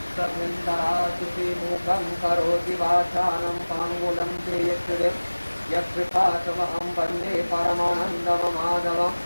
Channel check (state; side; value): inverted; both; correlation -1.00